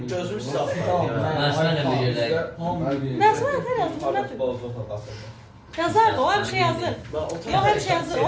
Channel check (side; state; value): both; identical; correlation 1.00